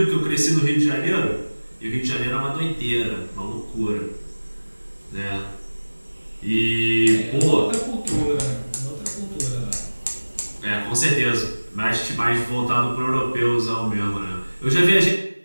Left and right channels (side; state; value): both; inverted; correlation -1.00